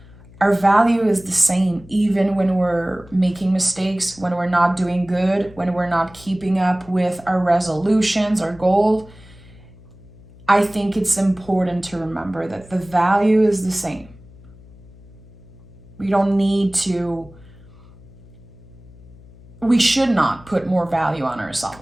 our value is the same, even when we're making mistakes, when we're not doing good, when we're not keeping up with our resolutions, our goals. I think it's important to remember that the value is the same. We should not put more value on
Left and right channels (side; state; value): left; noise; hum, 22 dB below the sound